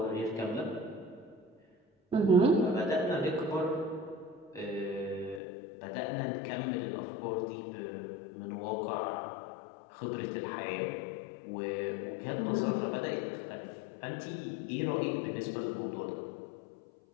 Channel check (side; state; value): right; drops out; at 5.4 s